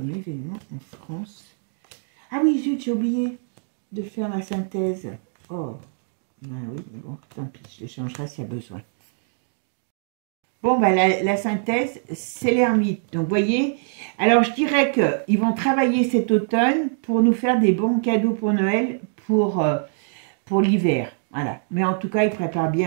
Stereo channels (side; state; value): left; silent; digital silence